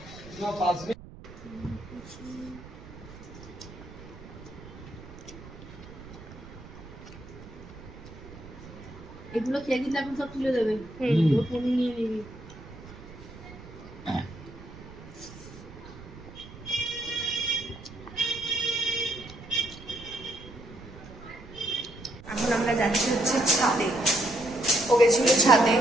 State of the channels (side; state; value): right; noise; rumble, 16 dB below the sound